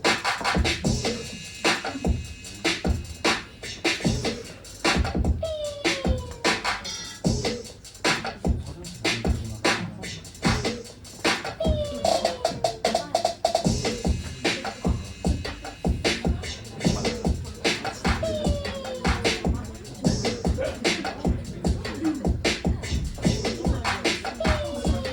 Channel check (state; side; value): identical; both; correlation 1.00